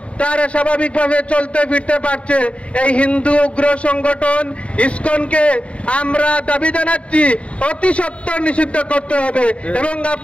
তারা স্বাভাবিকভাবে চলতে ফিরতে পারছে। এই হিন্দু উগ্র সংগঠন ইসকনকে আমরা দাবি জানাচ্ছি অতি সত্বর নিষিদ্ধ করতে হবে। এবং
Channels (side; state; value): right; late; 0.062 ms